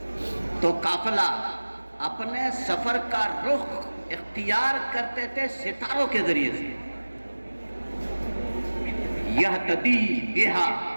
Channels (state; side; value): inverted; both; correlation -1.00